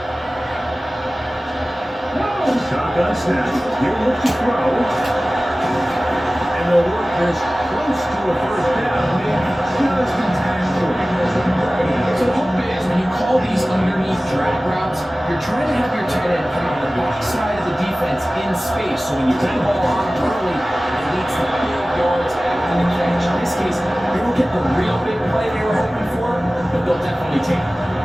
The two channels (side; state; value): both; normal; correlation 0.97